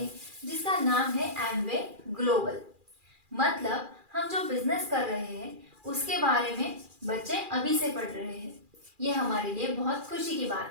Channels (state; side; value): late; left; 2.4 ms